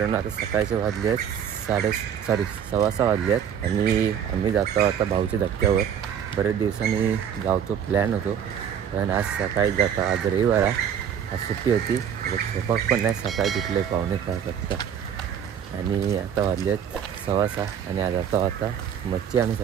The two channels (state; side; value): quieter; left; 8.5 dB